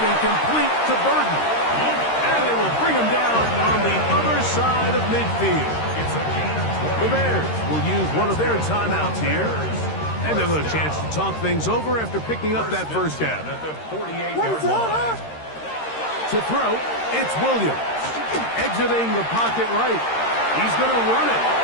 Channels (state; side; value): late; right; 13 ms